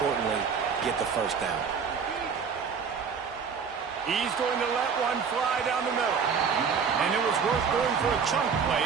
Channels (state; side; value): quieter; left; 6.2 dB